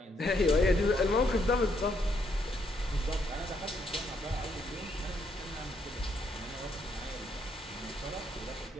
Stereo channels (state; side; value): normal; both; correlation 0.74